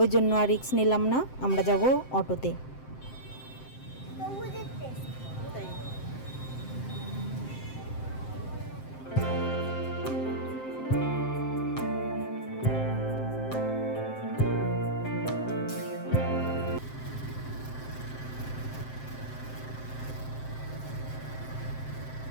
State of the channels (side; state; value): right; late; 7.7 ms